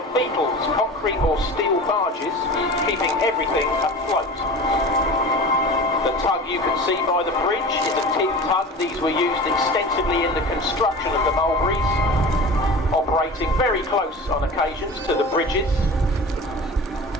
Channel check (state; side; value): normal; both; correlation 0.35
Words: beetles, concrete or steel barges, keeping everything afloat. The tug you can see by the bridge is a tin tug. These were used extensively in the construction of the Mulberries, operating very close on occasions to the bridges.